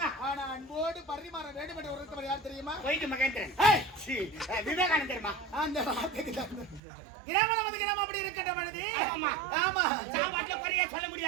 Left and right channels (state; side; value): drops out; left; at 6.8 s